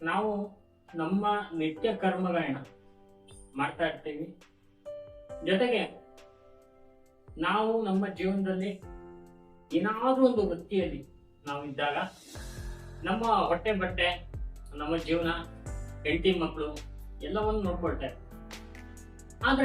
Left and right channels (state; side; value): identical; both; correlation 1.00